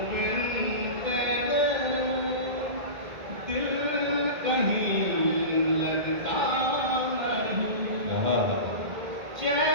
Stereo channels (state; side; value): late; left; 1.8 ms